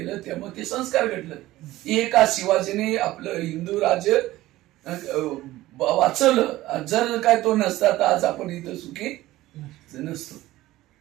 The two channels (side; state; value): left; quieter; 16.6 dB